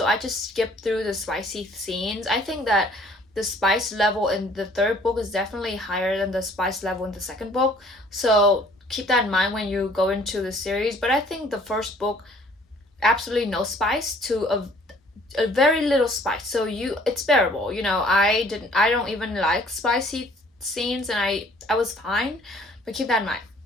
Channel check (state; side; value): normal; both; correlation 0.57